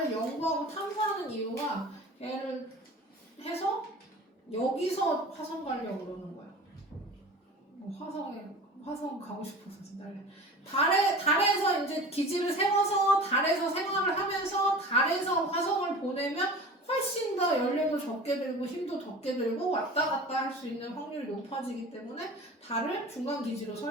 연구하고 탐사하는 이유가 얘를 해서 여기서 화성 가려고 그러는 거야. 화성 가고 싶어서 달에서 이제 기지를 세워서 달에서 생활을 하면서 달에서 화성을 보내면 훨씬 더 연료도 적게 들고 힘도 적게 들고 왔다 갔다 할 수 있는 확률이 높아지기 때문에 달을 중간 기지로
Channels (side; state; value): both; normal; correlation 0.37